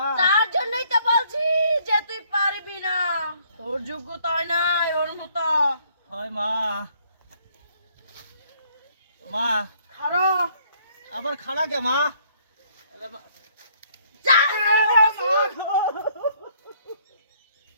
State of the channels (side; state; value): both; inverted; correlation -0.65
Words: তার জন্যই তো বলছি যে তুই পারবি না তোর যোগ্যতা নাই ওর মতো হয় মা মা খারো আবার খানা কে মা